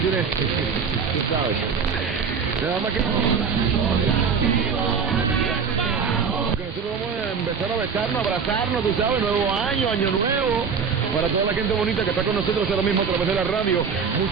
tú sabes. Nada más que nosotros vamos a empezar a besarnos, abrazarnos, tú sabes, nuevo año, año nuevo. Para toda la gente bonita que está con nosotros ahora mismo a través de la radio,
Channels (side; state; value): left; quieter; 6.0 dB